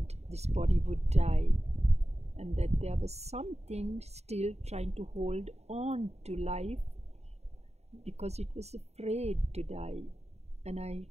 this body would die, and that there was something still trying to hold on to life because it was afraid to die. And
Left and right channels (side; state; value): left; late; 0.31 ms